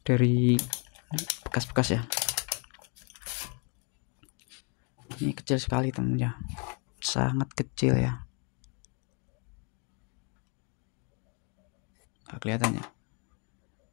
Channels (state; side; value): quieter; right; 36.6 dB